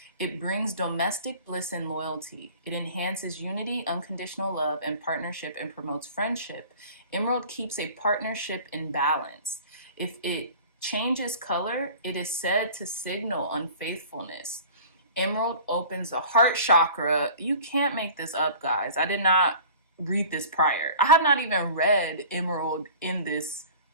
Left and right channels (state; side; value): inverted; both; correlation -0.43